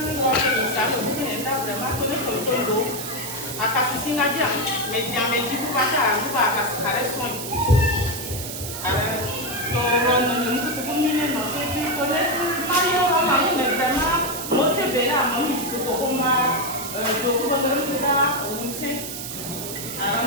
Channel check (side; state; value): right; noise; hiss, 7 dB below the sound